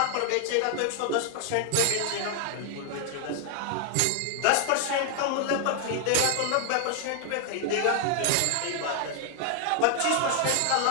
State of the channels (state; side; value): different; both; correlation 0.00